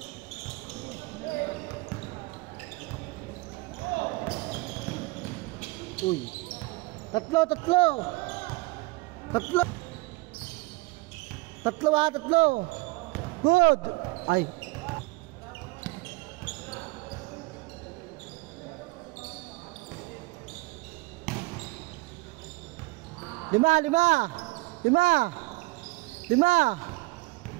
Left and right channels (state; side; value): quieter; left; 23.7 dB